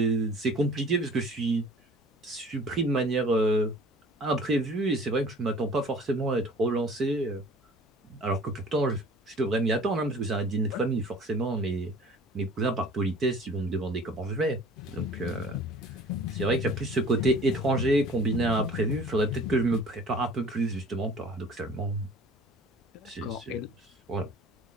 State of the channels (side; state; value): both; normal; correlation 0.47